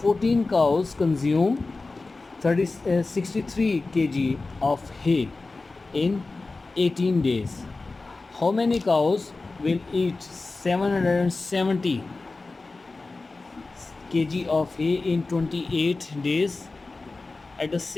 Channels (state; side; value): quieter; right; 3.6 dB